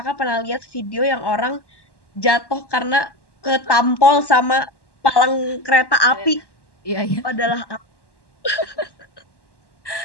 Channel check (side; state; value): right; late; 1.1 ms